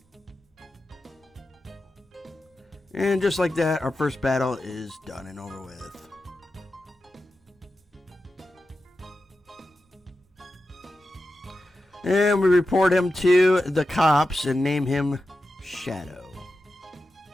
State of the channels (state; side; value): normal; both; correlation 0.91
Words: And just like that, our first battle is done and over with. And we report him to the cops and name him Shadow.